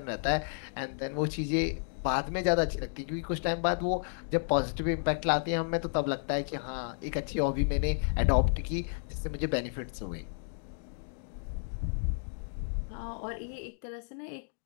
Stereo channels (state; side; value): silent; right; digital silence